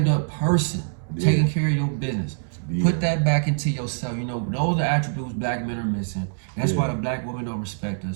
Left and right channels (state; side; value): silent; left; digital silence